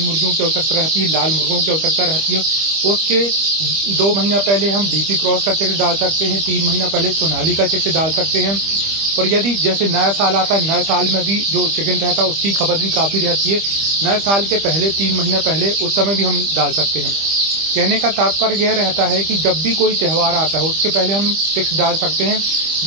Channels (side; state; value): left; late; 25 ms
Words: की आवश्यकता रहती है, लाल मुर्गों की आवश्यकता रहती है। उसके 2 महीना पहले हम डीपी क्रॉस का चिक्स डाल सकते हैं। 3 महीना पहले सोनाली का चिक्स डाल सकते हैं। और यदि जैसे नया साल आता है, नए साल में भी जो चिकन रहता है उसकी खपत भी काफ़ी रहती है। नए साल के पहले 3 महीने पहले उस समय भी हम डाल सकते हैं। कहने का तात्पर्य यह रहता है कि जब भी कोई त्यौहार आता है उसके पहले हम चिक्स डाल सकते हैं,